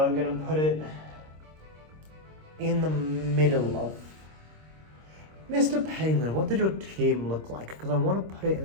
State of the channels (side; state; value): left; late; 26 ms